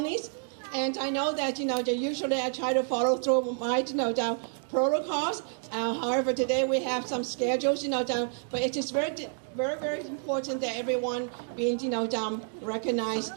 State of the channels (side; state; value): left; silent; 56 dB below the other